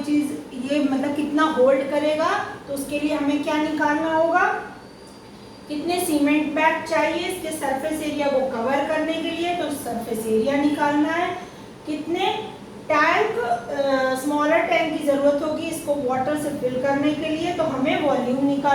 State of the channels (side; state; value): both; identical; correlation 1.00